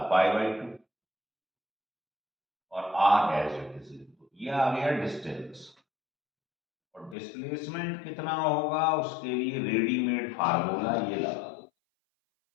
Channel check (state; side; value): drops out; right; at 7.2 s